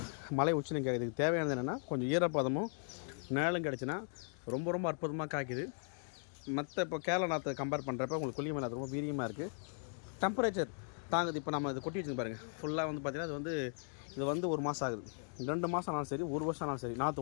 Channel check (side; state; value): right; silent; 53 dB below the other